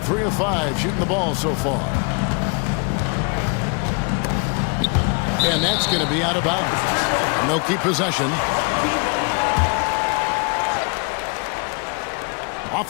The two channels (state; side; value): quieter; right; 34.4 dB